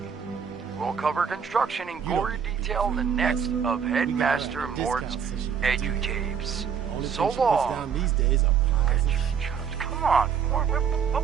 we'll cover construction in gory detail in the next of Headmaster Mort's edutapes. Only So thing she puts long. down these days are pies and shit. Come on, Mort, what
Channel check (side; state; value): left; quieter; 7.2 dB